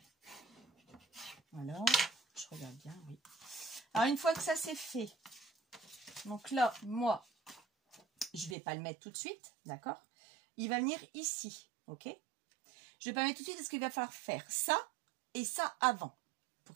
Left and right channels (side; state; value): left; drops out; at 8.6 s